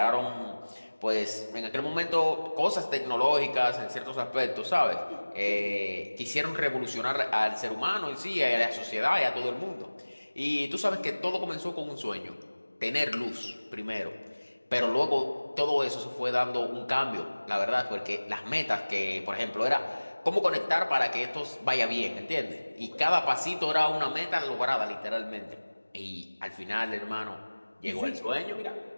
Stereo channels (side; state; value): both; inverted; correlation -1.00